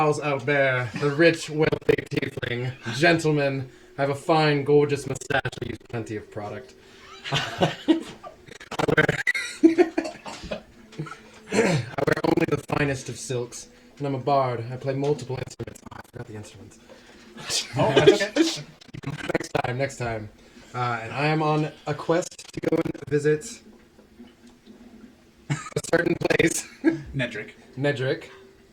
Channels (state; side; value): identical; both; correlation 1.00